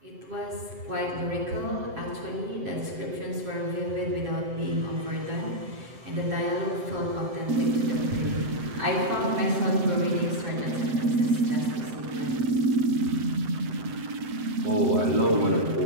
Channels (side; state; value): left; late; 7.8 ms